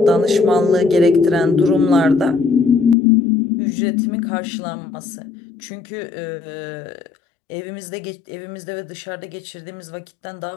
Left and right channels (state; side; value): drops out; right; at 3.0 s